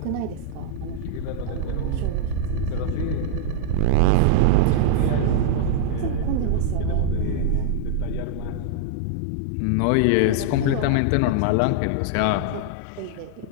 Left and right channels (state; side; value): different; both; correlation -0.01